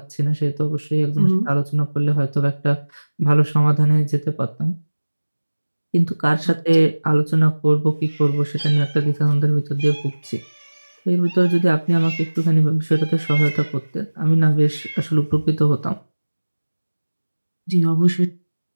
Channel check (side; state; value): both; inverted; correlation -1.00